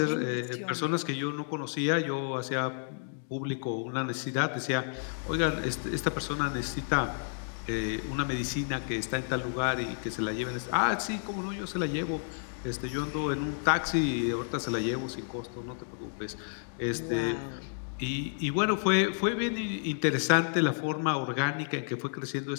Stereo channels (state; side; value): silent; right; digital silence